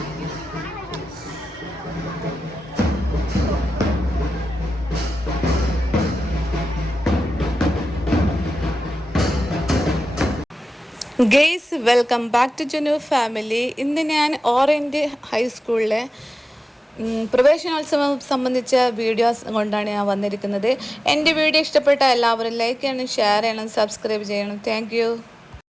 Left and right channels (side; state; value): both; normal; correlation 0.93